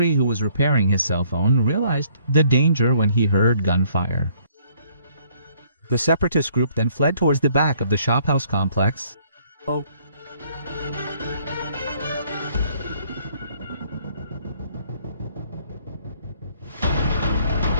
who was repairing his cell phone, realized the danger when he heard gunfire. The separatist group then fled towards the back of the shophouse complex.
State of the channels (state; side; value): inverted; both; correlation -0.63